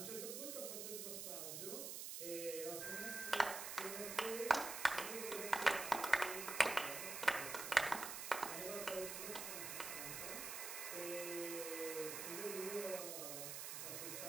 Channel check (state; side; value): noise; right; hiss, 5 dB below the sound